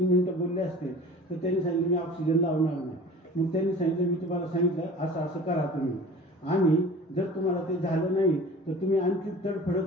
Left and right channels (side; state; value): both; normal; correlation 0.41